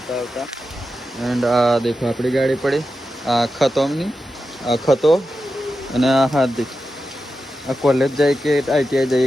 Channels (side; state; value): both; normal; correlation 0.90